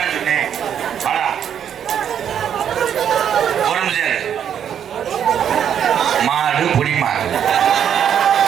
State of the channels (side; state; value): left; quieter; 8.9 dB